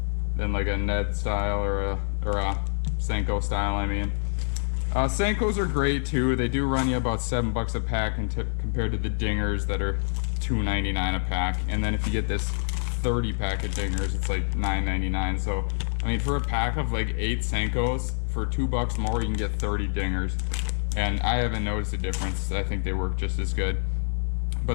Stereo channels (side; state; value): right; silent; 61 dB below the other